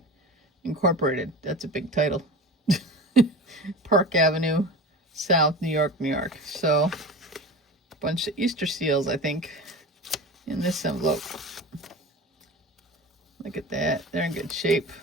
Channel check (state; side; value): normal; both; correlation 0.32